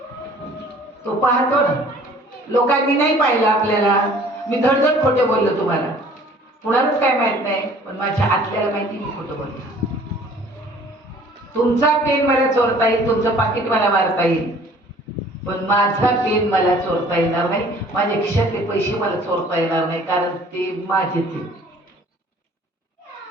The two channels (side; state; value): both; normal; correlation 0.53